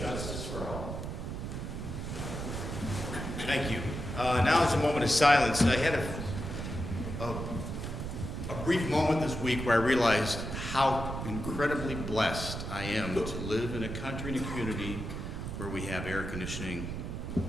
justice for all. Thank you. Now is a moment of silence. I had a brief moment this week where I realized how incredibly blessed I am to live in a country and a community where we have air conditioning,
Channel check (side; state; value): right; noise; rumble, 5 dB below the sound